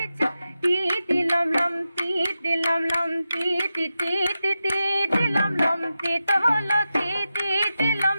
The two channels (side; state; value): both; inverted; correlation -0.91